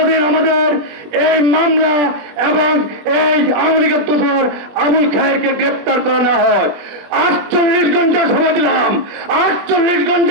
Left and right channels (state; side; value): late; left; 21 ms